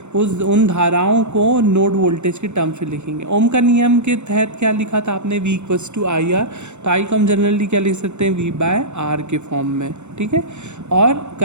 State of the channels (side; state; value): left; late; 0.83 ms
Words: उन धाराओं को नोड वोल्टेज के टर्म से लिखेंगे। ओम का नियम के तहत क्या लिखा था आपने, V = IR, तो I को हम जनरली क्या लिख सकते हैं, V/R के फॉर्म में, ठीक है। और